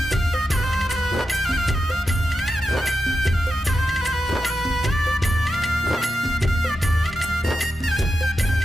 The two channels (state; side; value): normal; both; correlation 0.89